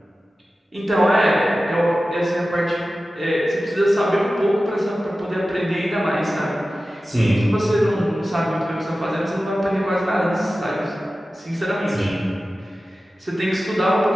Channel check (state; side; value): normal; both; correlation 0.95